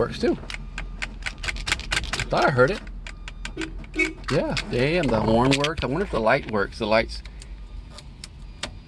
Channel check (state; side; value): identical; both; correlation 1.00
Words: too. I thought I heard it. Yeah, damn, the horn worked. I wonder if the light works. The lights.